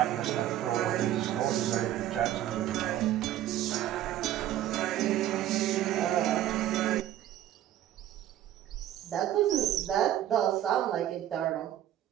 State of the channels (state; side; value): quieter; left; 12.4 dB